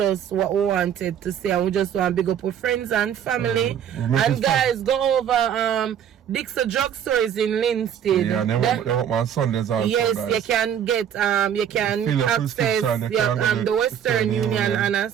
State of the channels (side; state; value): left; quieter; 9.1 dB